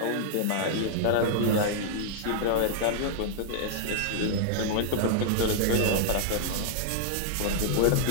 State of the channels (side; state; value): both; different; correlation -0.01